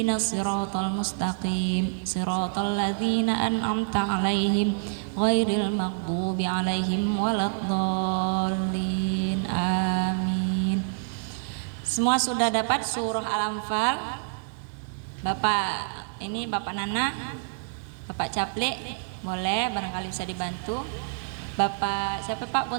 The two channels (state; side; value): silent; left; digital silence